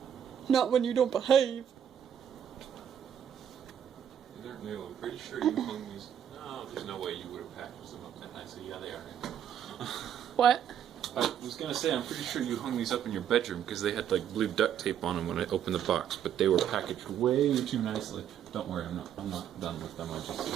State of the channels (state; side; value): quieter; left; 9.4 dB